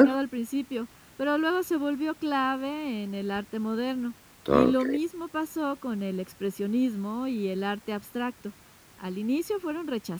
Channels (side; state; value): both; identical; correlation 1.00